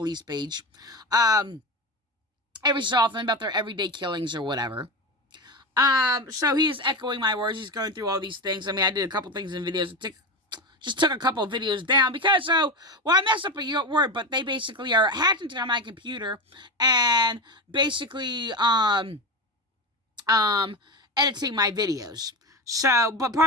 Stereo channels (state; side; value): normal; both; correlation 0.20